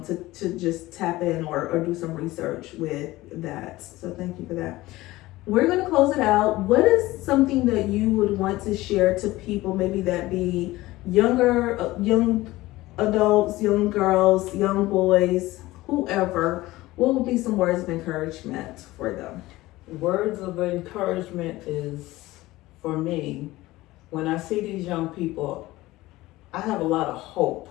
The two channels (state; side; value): quieter; right; 18.3 dB